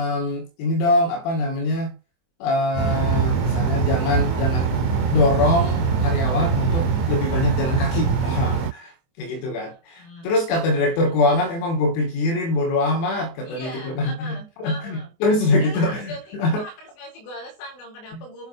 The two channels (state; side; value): late; right; 24 ms